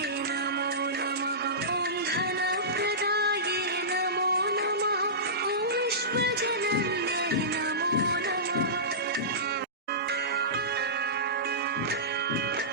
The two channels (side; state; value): both; normal; correlation -0.19